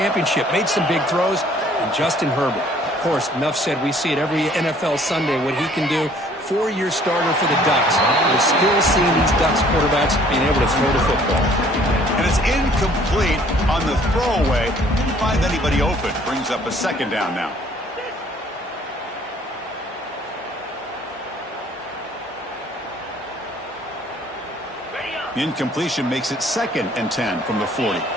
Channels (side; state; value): both; normal; correlation 0.58